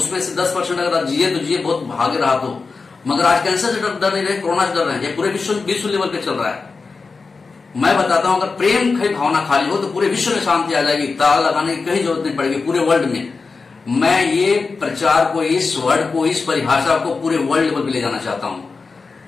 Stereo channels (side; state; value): right; quieter; 4.4 dB